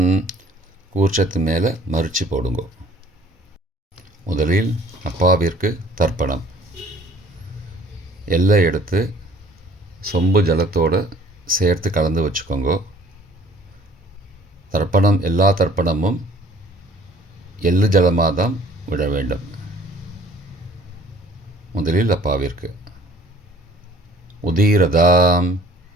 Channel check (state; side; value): normal; both; correlation 0.54